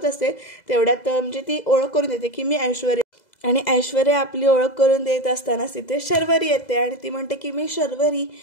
असते तेवढ्यात म्हणजे ती ओळख करून देते की मी ऐश्वर्या. आणि ऐश्वर्या आपली ओळख करून देत असतानाच तिथे शर्वरी येते आणि ती म्हणते की मी शर्वरी,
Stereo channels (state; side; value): late; right; 2.0 ms